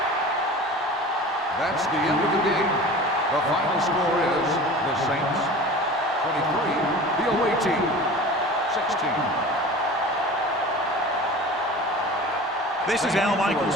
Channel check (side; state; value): both; normal; correlation 0.38